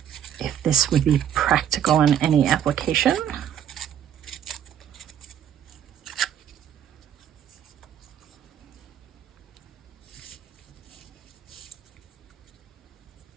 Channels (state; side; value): quieter; left; 9.7 dB